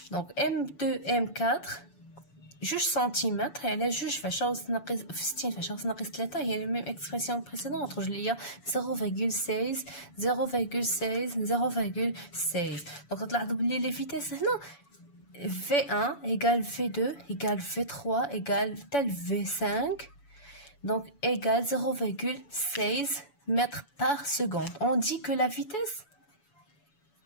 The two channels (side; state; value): right; late; 7.0 ms